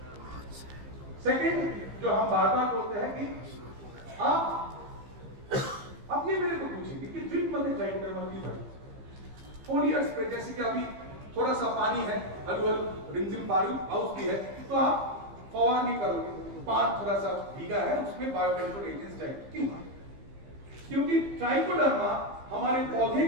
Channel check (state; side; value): late; left; 15 ms